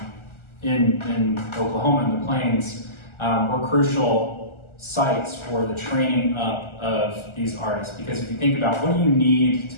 in Oklahoma in the Plains, were crucial sites for the training up of these artists. Because if you think about what do you need to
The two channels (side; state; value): right; late; 1.4 ms